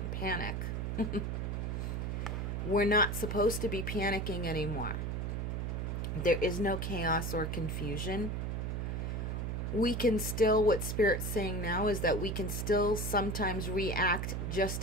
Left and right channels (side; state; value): right; noise; hum, 2 dB below the sound